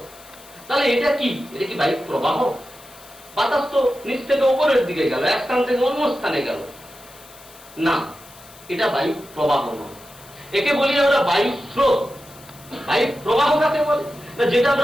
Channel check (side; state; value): left; noise; hiss, 21 dB below the sound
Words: তাহলে এটা কি? এটা কি বায়ু প্রবাহ? বাতাস তো নিচ থেকে ওপরের দিকে গেল, এক স্থান থেকে অন্য স্থানে গেল না, এটা বায়ু প্রবাহ নয়। একে বলি আমরা বায়ু স্রোত। বায়ু প্রবাহ কাকে বলে না? যেটা